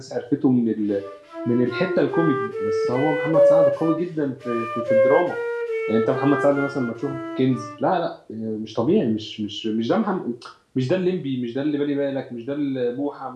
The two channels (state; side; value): identical; both; correlation 1.00